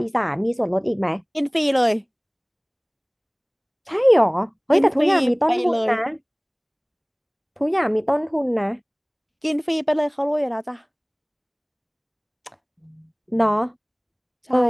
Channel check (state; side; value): identical; both; correlation 1.00